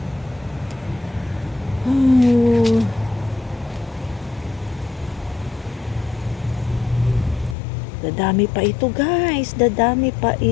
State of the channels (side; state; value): right; drops out; at 7.6 s